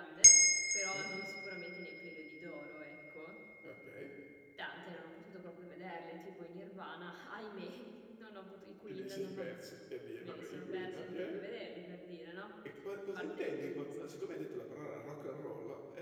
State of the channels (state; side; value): identical; both; correlation 1.00